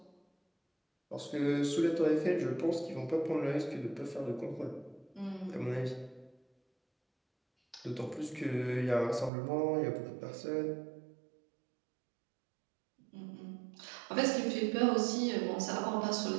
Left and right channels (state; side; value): drops out; left; at 9.3 s